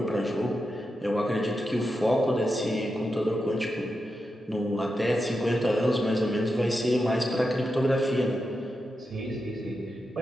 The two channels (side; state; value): both; normal; correlation 0.88